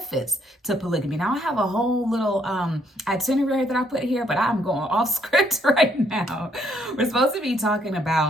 to polygamy. Now I have a whole little itinerary that I put here, but I'm going off script right now. We're supposed to be talking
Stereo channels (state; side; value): normal; both; correlation 0.70